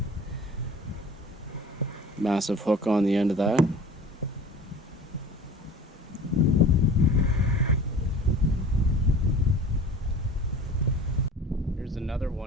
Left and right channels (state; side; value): normal; both; correlation 0.42